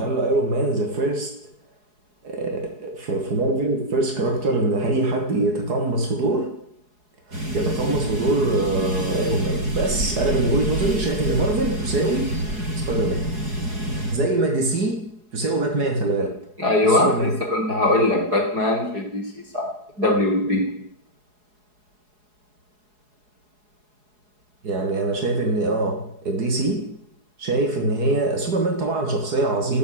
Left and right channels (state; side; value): late; left; 4.8 ms